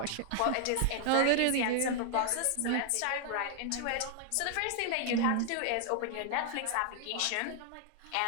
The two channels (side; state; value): both; different; correlation 0.00